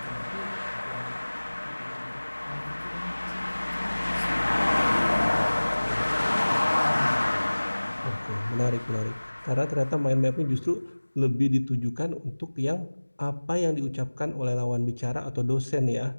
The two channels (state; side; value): inverted; both; correlation -1.00